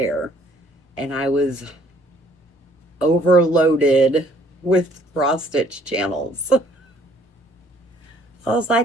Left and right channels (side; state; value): both; normal; correlation 0.61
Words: and I was overloaded with cross stitch channels. I was